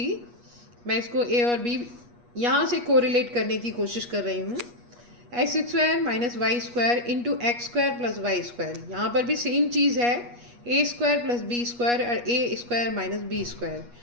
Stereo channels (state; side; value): late; left; 8.3 ms